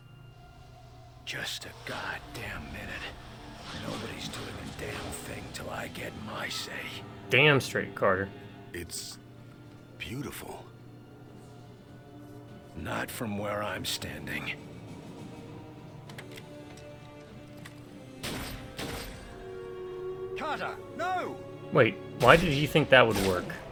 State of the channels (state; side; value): identical; both; correlation 1.00